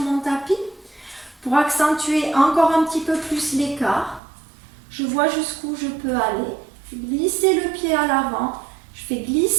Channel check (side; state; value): left; drops out; at 4.2 s